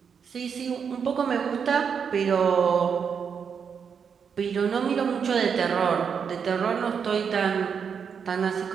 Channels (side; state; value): left; quieter; 6.7 dB